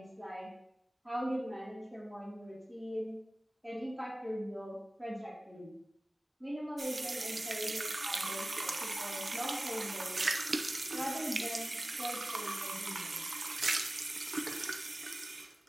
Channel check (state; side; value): normal; both; correlation 0.97